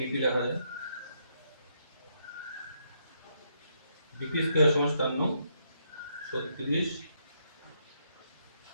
লেখা যায় বিপি স্কয়ার সমান 36।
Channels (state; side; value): inverted; both; correlation -0.76